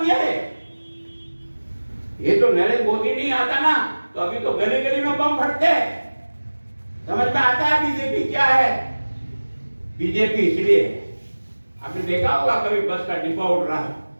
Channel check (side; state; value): both; inverted; correlation -1.00